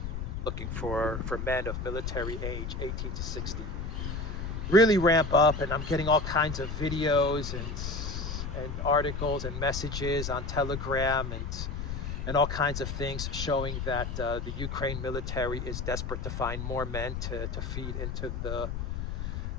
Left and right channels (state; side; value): noise; left; rumble, 4 dB below the sound